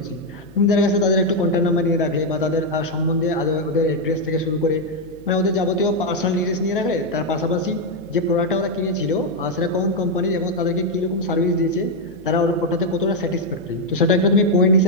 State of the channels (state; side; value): noise; left; hum, 23 dB below the sound